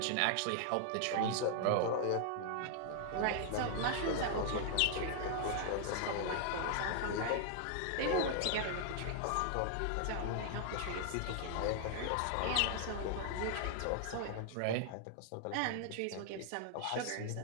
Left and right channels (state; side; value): different; both; correlation 0.00